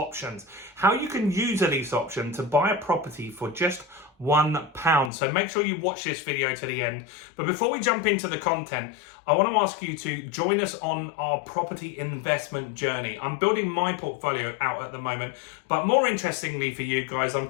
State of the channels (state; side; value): drops out; right; at 5.1 s